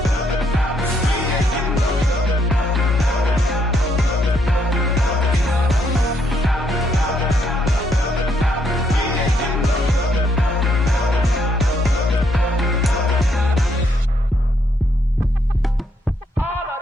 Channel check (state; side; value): normal; both; correlation 0.73